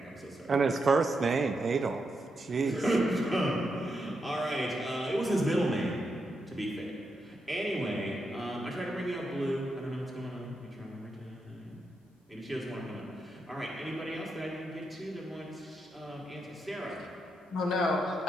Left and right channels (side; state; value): both; normal; correlation 0.84